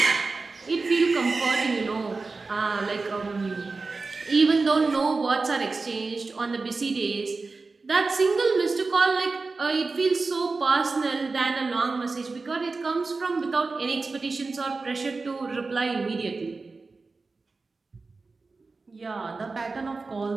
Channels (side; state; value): left; quieter; 3.9 dB